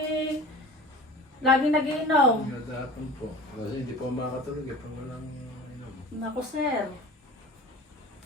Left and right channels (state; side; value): normal; both; correlation 0.39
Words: laging nag-iinom. Hapon po. Kasi hindi po makakatulog pag walang inom. Naku, sir.